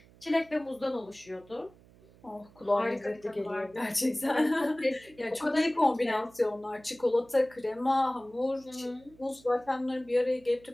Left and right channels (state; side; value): noise; right; hum, 26 dB below the sound